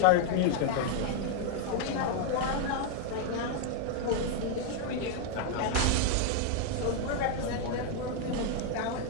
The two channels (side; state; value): both; different; correlation 0.00